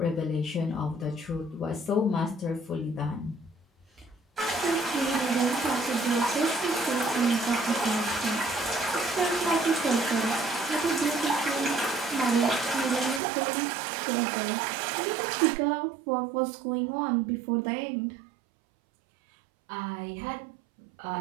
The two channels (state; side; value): drops out; left; at 13.2 s